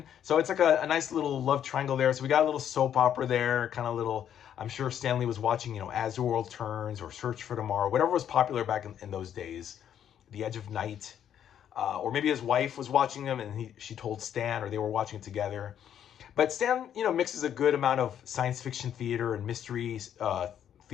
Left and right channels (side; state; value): right; quieter; 9.6 dB